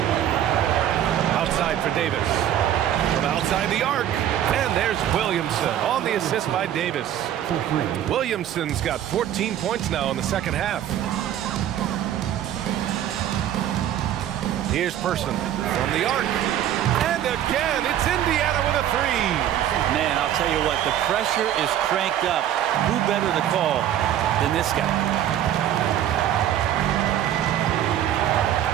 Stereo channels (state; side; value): quieter; left; 11.1 dB